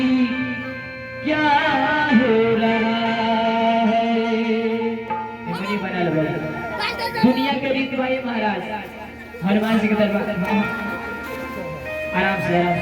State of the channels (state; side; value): identical; both; correlation 1.00